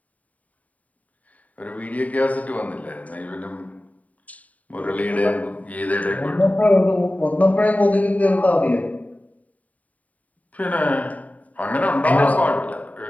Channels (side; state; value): right; late; 0.070 ms